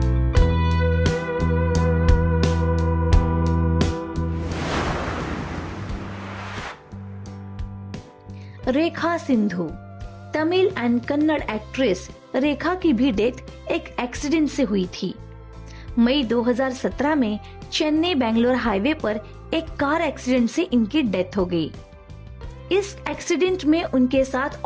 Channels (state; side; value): identical; both; correlation 1.00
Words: रेखा सिंधु। तमिल एंड कन्नड़ एक्ट्रेस रेखा की भी डेथ एक एक्सीडेंट से हुई थी। मई 2017 में चेन्नई बेंगलोर हाईवे पर एक कार एक्सीडेंट से इनकी डेथ हो गई। इस एक्सीडेंट में उनके साथ